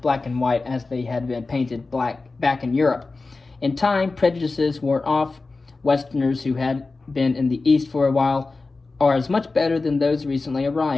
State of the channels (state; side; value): quieter; right; 3.7 dB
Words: and white as they had been painted black back in Europe. In time, prejudices wore off. Westerners who had been in the East for a while are as much better than those recently